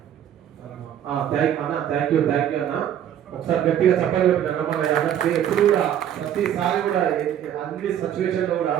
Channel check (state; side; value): quieter; left; 10.2 dB